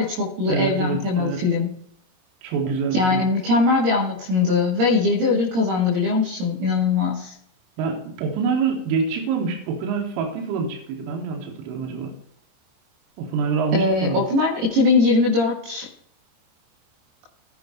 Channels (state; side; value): late; left; 22 ms